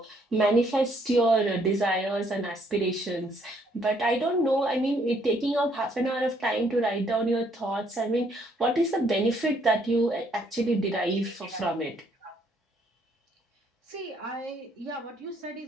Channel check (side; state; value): both; normal; correlation 0.68